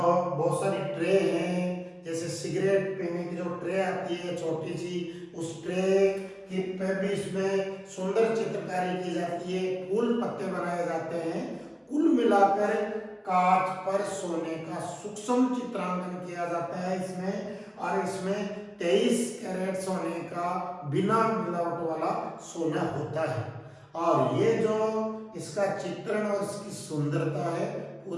सारी ट्रे हैं, जैसे सिगरेट पीने की जो ट्रे आती है छोटी सी, उस ट्रे की पे भी इसमें सुंदर चित्रकारी की जाती है, फूल पत्ते बनाए जाते हैं। कुल मिलाकर कांच पर सोने का सूक्ष्म चित्रांकन किया जाता है इसमें, और इसमें 23 कैरेट सोने का बिना मिलावट वाला सोना होता है। और ये जो इसका चित्रण और इसकी सुंदरता है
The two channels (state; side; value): identical; both; correlation 1.00